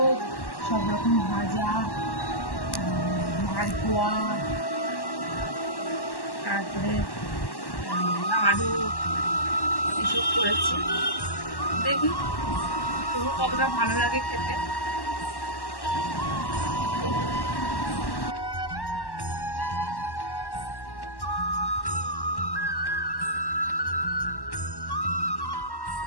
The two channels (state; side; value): late; right; 1.1 ms